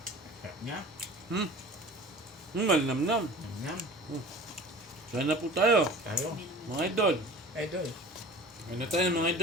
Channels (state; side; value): normal; both; correlation 0.41